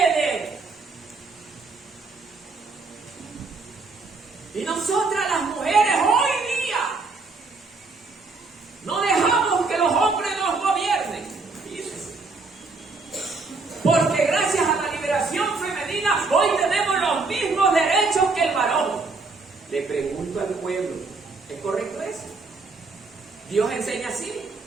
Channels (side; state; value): left; quieter; 3.9 dB